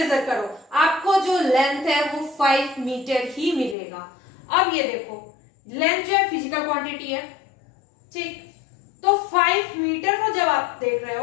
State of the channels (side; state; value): right; drops out; at 3.8 s